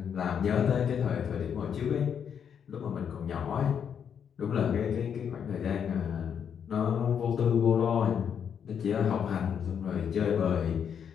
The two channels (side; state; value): right; quieter; 7.8 dB